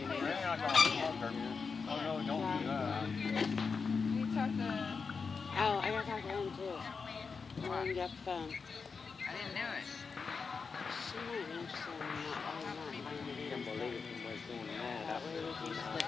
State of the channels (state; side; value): quieter; right; 5.1 dB